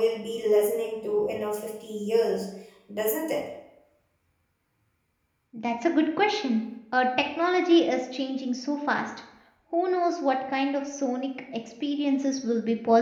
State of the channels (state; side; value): identical; both; correlation 1.00